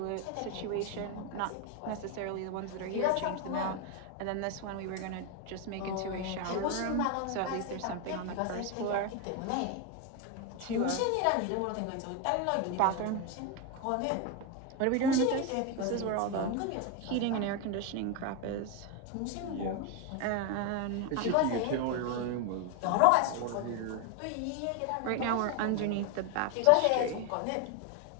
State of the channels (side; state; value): both; different; correlation 0.02